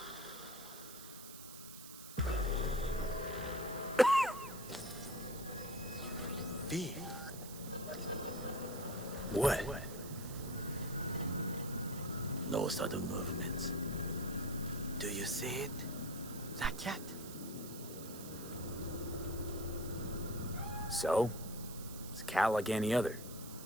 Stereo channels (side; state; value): right; noise; hiss, 13 dB below the sound